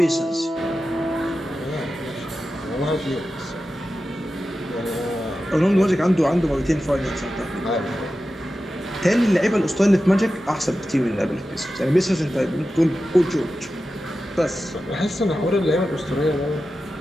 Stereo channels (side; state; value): both; normal; correlation 0.92